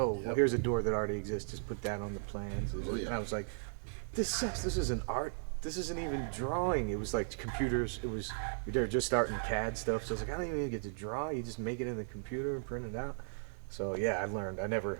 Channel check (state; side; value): silent; left; digital silence